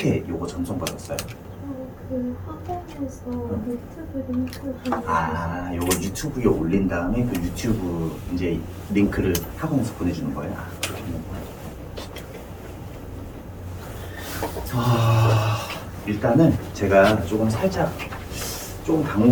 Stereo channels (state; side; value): identical; both; correlation 1.00